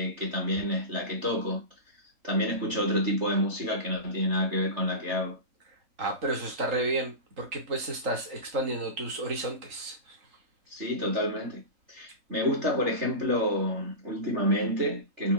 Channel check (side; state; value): left; late; 3.8 ms